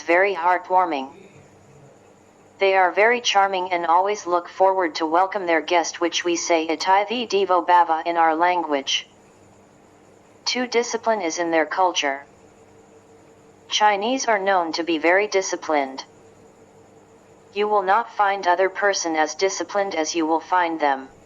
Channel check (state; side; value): identical; both; correlation 1.00